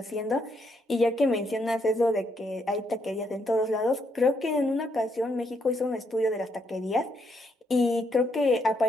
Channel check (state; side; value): normal; both; correlation 0.75